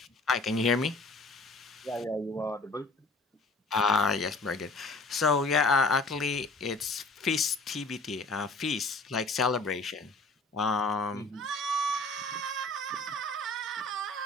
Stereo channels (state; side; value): quieter; right; 3.0 dB